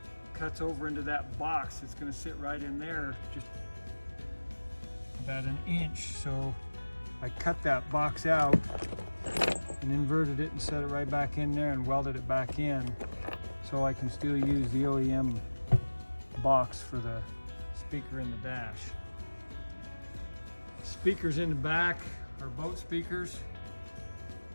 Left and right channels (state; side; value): inverted; both; correlation -1.00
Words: cuts over into that box. It's gonna sit right in there, just about 1 inch. So I cut that box out and inverted it and set it right back in there and welded it back in so I can still use the OEM box for the speaker in the dash. Speakers in the back are boat speakers.